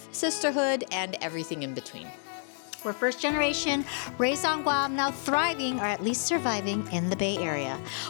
sisterhood, and everything in between. We're first generation, raised on Guam, now thriving or at least surviving in the Bay Area.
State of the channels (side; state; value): right; silent; 58 dB below the other